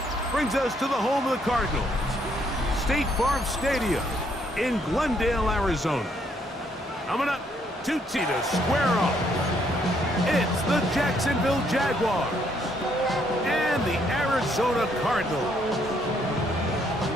brings us to the home of the Cardinals, State Farm Stadium in Glendale, Arizona. Coming up, two teams to square off. It's the Jacksonville Jaguars and the Arizona Cardinals.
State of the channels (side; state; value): both; normal; correlation 0.70